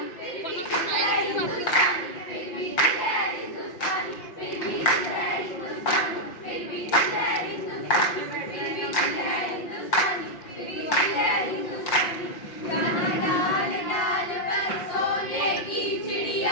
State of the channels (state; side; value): late; right; 5.6 ms